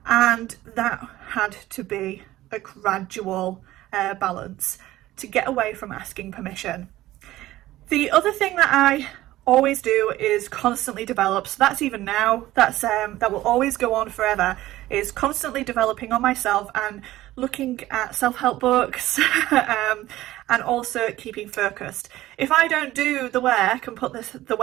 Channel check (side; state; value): left; quieter; 15.8 dB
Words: and that had to be a gradual balance to get away from asking permission. The other thing that I always do is constantly develop, so that's even now, that will always go on forever, is constantly developing on myself and looking at self-help books and also keeping focused. If I don't do the work and put the